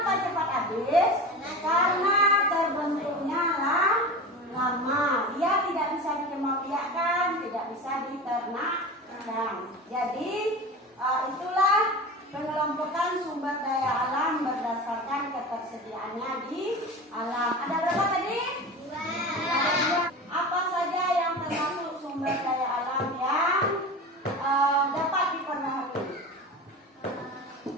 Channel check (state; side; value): normal; both; correlation 0.30